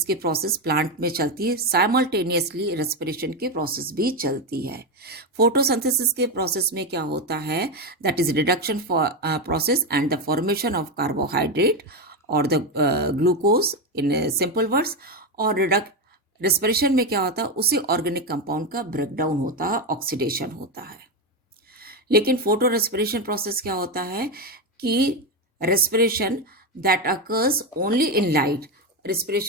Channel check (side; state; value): both; normal; correlation 0.12